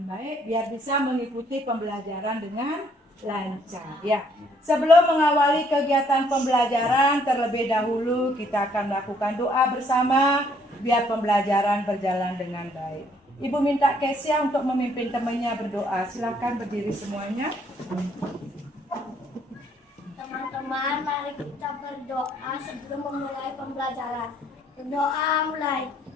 baik biar bisa mengikuti pembelajaran dengan lancar. Ya, sebelum mengawali kegiatan pembelajaran terlebih dahulu kita akan melakukan doa bersama biar pembelajaran berjalan dengan baik. Ibu minta Kesia untuk memimpin temannya berdoa. Silakan berdiri semuanya. Teman-teman, mari kita berdoa sebelum memulai pembelajaran. Berdoa mulai.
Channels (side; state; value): both; normal; correlation 0.66